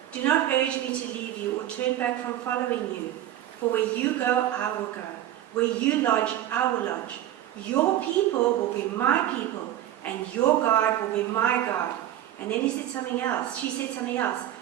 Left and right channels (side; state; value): left; quieter; 12.4 dB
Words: "Do not urge me to leave you or turn back from following you. For where you go, I will go. Where you lodge, I will lodge. Your people will be my people, and your God will be my God." And then he said something else. She said something else.